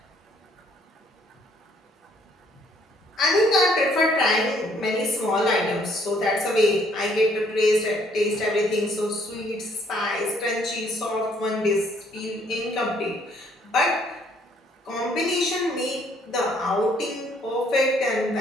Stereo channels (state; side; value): normal; both; correlation 0.65